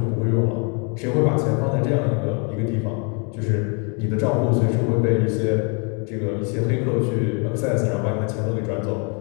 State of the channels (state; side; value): quieter; right; 35.8 dB